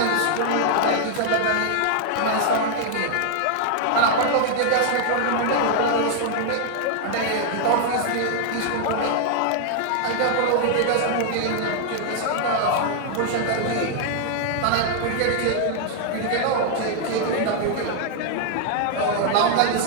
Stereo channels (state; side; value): different; both; correlation -0.01